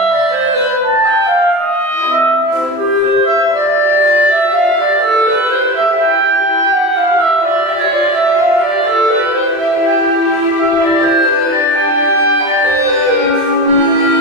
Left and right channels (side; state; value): left; late; 27 ms